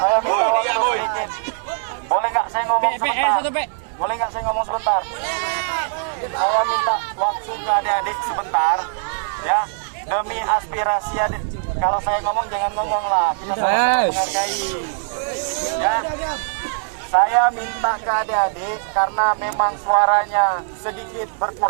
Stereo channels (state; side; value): silent; left; 65 dB below the other